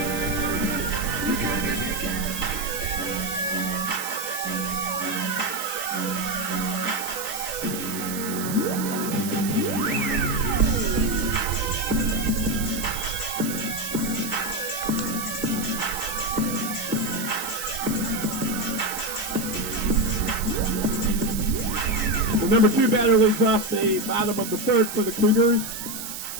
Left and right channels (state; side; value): noise; right; hiss, 7 dB below the sound